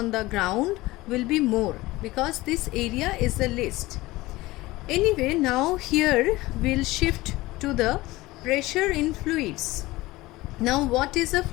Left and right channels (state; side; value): quieter; right; 19.3 dB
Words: the ground will be more because this area is the least. Anyway, now here we'll shift to the pressure in fluids. Now what is a